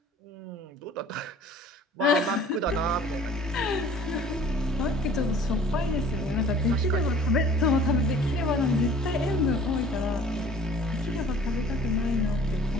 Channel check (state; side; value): normal; both; correlation 0.50